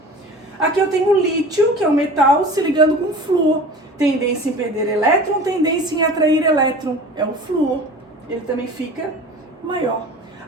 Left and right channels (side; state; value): both; normal; correlation 0.39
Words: Aqui eu tenho o lítio, que é um metal, se ligando com flúor, tendência em perder elétron, tendência em atrair elétron, é o flúor. Ele também fica maior.